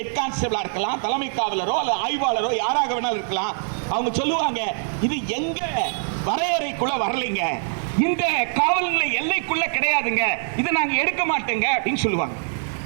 கான்ஸ்டபிளா இருக்கலாம், தலைமை காவலரோ அல்லது ஆய்வாளரோ யாராக வேணாலும் இருக்கலாம், அவங்க சொல்லுவாங்க இது எங்க வரையறைக்குள்ள வரலைங்க, இந்த காவல் நிலைய எல்லைக்குள்ள கிடையாதுங்க, இதை நாங்க எடுக்க மாட்டோங்க அப்படின்னு சொல்லுவாங்க.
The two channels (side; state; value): left; silent; digital silence